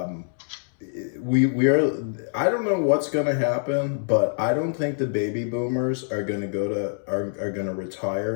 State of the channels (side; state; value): right; silent; 62 dB below the other